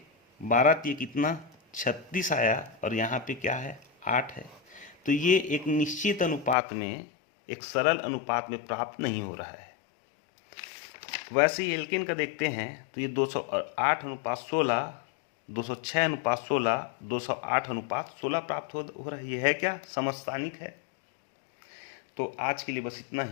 12 तिये कितना 36 आया, और यहाँ पे क्या है 8 है। तो ये एक निश्चित अनुपात में, एक सरल अनुपात में प्राप्त नहीं हो रहा है। वैसे ही एल्केन का देखते हैं तो ये 208:16, 206:16, 208:16 प्राप्त हो रही है। क्या समस्थानिक है? तो आज के लिए बस इतना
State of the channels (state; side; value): drops out; right; at 6.6 s